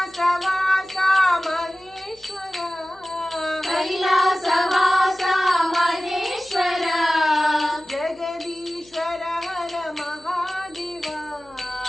ಮಹೇಶ್ವರ ಕೈಲಾಸವಾಸ ಮಹೇಶ್ವರ ಜಗದೀಶ್ವರ ಹರ ಮಹಾದೇವ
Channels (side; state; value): left; noise; hum, 28 dB below the sound